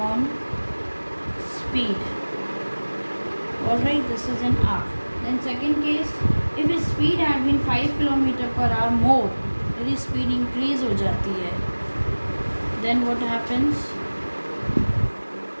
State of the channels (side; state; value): both; inverted; correlation -1.00